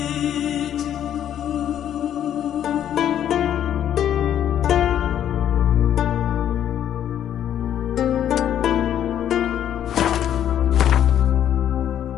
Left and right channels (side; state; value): right; quieter; 10.3 dB